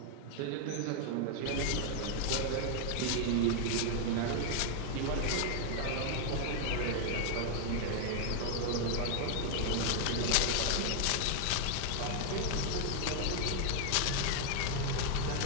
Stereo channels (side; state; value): both; different; correlation 0.00